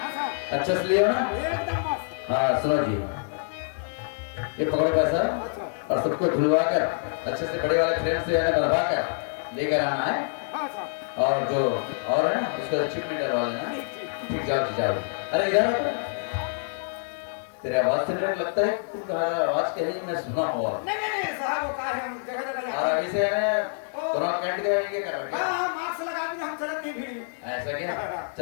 अच्छा से लियो ना एकदम मस्त हाँ सुनो जी ये पकड़ो पैसा और सबको धुलवा कर अच्छे से बड़े वाले फ्रेम से बनवा कर लेकर आना है हाँ साहब और जो और है ना उसको चिप में डलवा लेना ठीक जाओ जाओ अरे इधर आओ। तेरे आवाज से मुझे लगता है तुम्हारा आवाज कहीं मैं सुना हुआ नहीं साहब वो कहा है हम जगह जगह और जाते अभी से है कोरोना कैंट के ये कर रहे हाँ हाँ मास्क लगा के हम चलत नहीं भीड़ में ऐसा क्या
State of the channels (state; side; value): silent; right; digital silence